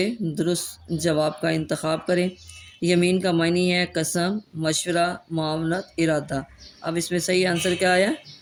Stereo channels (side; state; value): both; identical; correlation 1.00